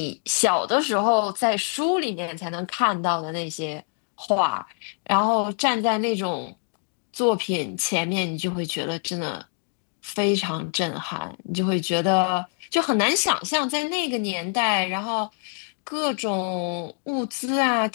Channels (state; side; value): silent; right; 56 dB below the other